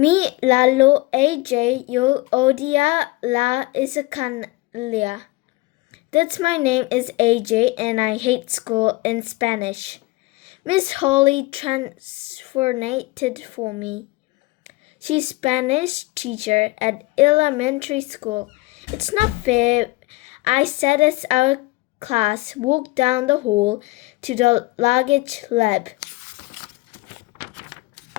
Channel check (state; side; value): quieter; right; 21.8 dB